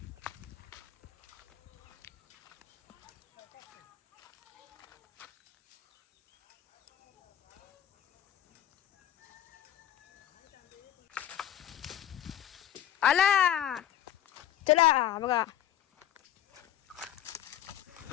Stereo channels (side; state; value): right; quieter; 11.5 dB